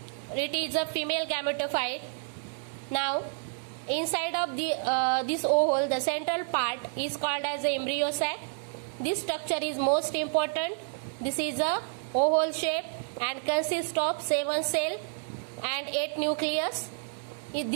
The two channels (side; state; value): left; silent; 58 dB below the other